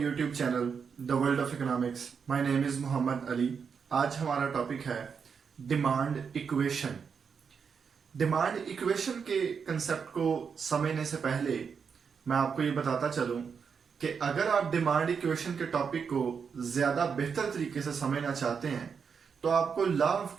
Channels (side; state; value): left; quieter; 6.3 dB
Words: channel the world of economics. My name is Mohammad Ali. आज हमारा टॉपिक है डिमांड इक्वेशन। डिमांड इक्वेशन के कंसेप्ट को समझने से पहले मैं आपको ये बताता चलूं कि अगर आप डिमांड इक्वेशन के टॉपिक को ज़्यादा बेहतर तरीके से समझना चाहते हैं तो आपको लॉ ऑफ